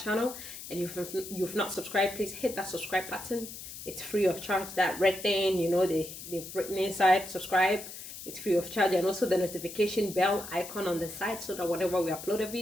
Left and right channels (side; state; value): left; noise; hiss, 12 dB below the sound